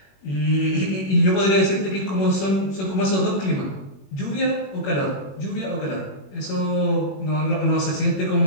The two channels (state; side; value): late; right; 21 ms